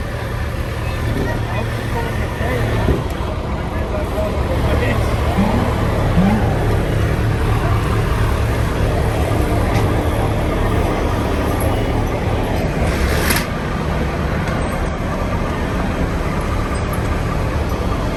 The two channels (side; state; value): both; identical; correlation 1.00